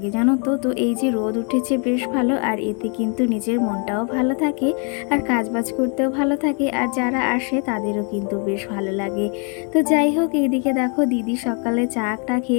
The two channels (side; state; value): right; quieter; 37.7 dB